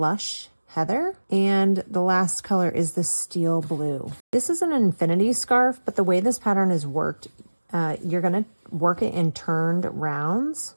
Heather, and the last color is the Steel Blue. This is an infinity scarf, but the way this pattern is worked, you're gonna work it in turned rounds.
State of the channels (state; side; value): inverted; both; correlation -1.00